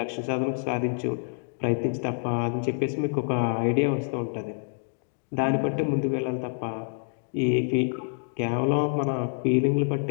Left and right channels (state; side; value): silent; right; digital silence